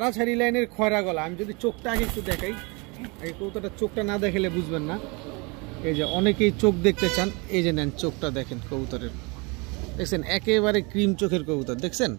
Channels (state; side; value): quieter; left; 29.1 dB